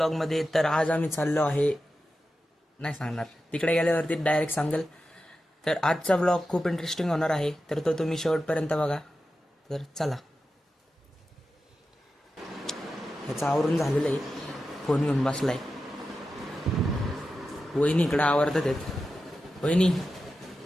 मध्ये. तर आज आम्ही चाललो आहे, नाही सांगणार, तिकडे गेल्यावरती डायरेक्ट सांगेल. तर आजचा ब्लॉग खूप इंटरेस्टिंग होणार आहे, तर तो तुम्ही शेवटपर्यंत बघा. तर चला. ह्याचं आवरून झालेलं आहे, फोन घेऊन बसलाय. वहिनी इकडं आवरतात आहेत. वहिनी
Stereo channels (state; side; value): normal; both; correlation 0.91